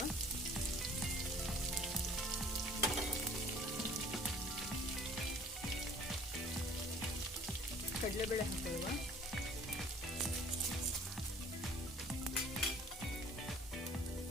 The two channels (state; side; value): normal; both; correlation 0.52